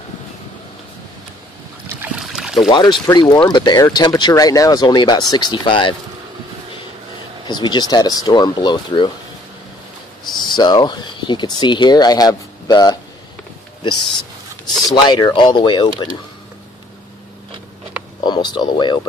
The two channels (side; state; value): both; normal; correlation 0.61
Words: The water's pretty warm, but the air temperature right now is only about 65 because we just had a storm blow through. So you can see here I have this slider all the way open, almost all the way